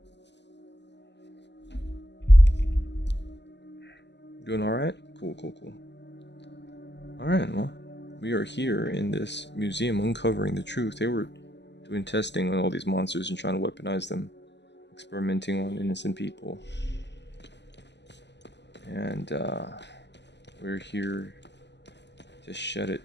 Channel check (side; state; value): right; late; 0.51 ms